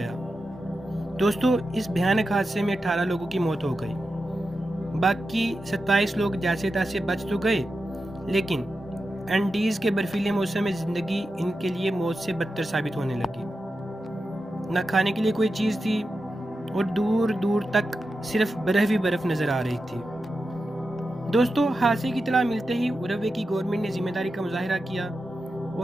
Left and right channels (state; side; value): normal; both; correlation 0.90